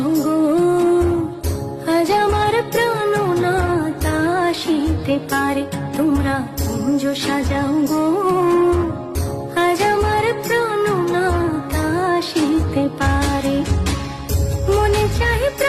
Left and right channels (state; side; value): identical; both; correlation 1.00